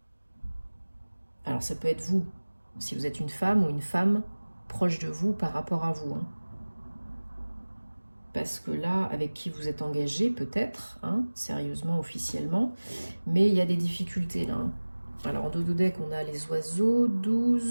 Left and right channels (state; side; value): inverted; both; correlation -1.00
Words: Alors ça peut être vous, si vous êtes une femme ou une femme proche de vous par rapport à vous. Parce que là, avec qui vous êtes engagé, peut-être, sérieusement, officiellement, mais il y a des difficultés là. Alors en dodo-deck, on a les oiseaux,